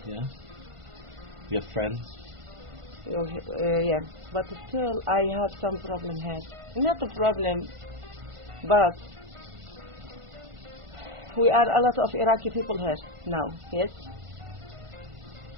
Yeah. You have friends. Yeah. But still, I have some problem here. Not a problem, but we are a lot of Iraqi people here now. Yes.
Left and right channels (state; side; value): late; left; 1.4 ms